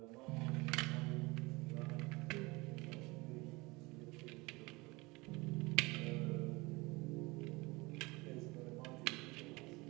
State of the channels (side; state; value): left; quieter; 23.9 dB